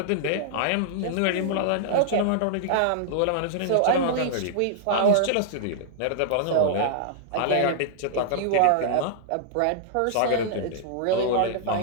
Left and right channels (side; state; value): both; different; correlation -0.01